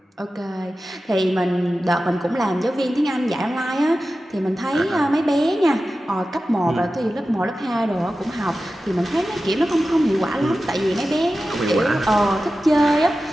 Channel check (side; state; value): both; normal; correlation 0.94